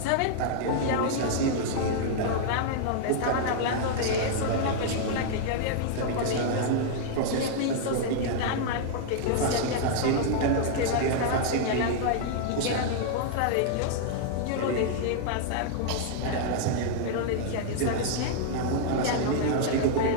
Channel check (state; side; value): different; both; correlation -0.01